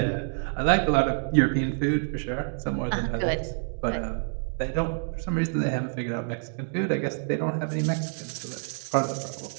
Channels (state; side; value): silent; left; digital silence